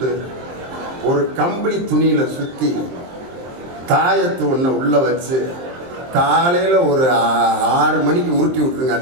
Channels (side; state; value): left; late; 23 ms